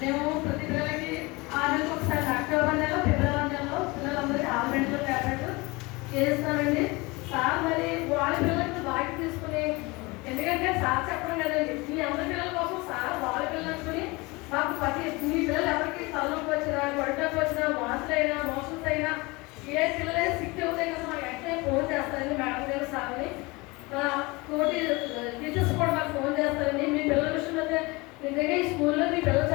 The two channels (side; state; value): right; quieter; 24.4 dB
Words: ప్రతి పిల్లలకి 6 నెలలకు ఒకసారి అక్టోబర్ నెలలో ఫిబ్రవరి నెలలో పిల్లలందరికీ ఆల్మెంట్లో ట్యాబ్లెట్ చేస్తామండి. సార్ మరి వాళ్ళ పిల్లలకి బాగా తీసుకుని, ఎందుకంటే సార్ చెప్పడం కదండి, మీ అందరి పిల్లల కోసం సార్ వాళ్ళ పిల్లలు అనుకుని మాకు మీ పిల్లలు ఎవరికి తలనొప్పి వచ్చినా, గొడ్డకు వచ్చినా, వాసులైనా మోషన్స్ అయినా ఏ పిల్లలైనా సిక్ అవుతాయి కదా మాకు వెంటనే ఫోన్ చేస్తారండి మేడం గారు సార్ని. తోటి టీచర్స్ కూడా మాకు ఫోన్ చేస్తారండి. మీ పిల్లల విషయంలో అయితే నిజంగా ఈ స్కూల్లో మీ పిల్లలు